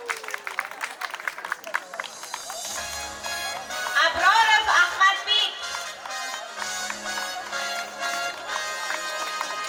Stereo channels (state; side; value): identical; both; correlation 1.00